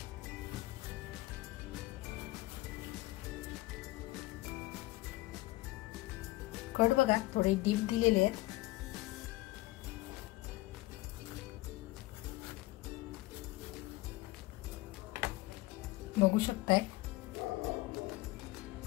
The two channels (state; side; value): quieter; right; 19.4 dB